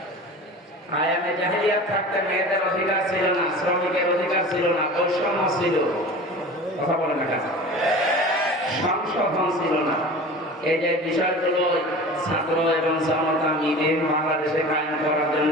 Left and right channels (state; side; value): normal; both; correlation 0.37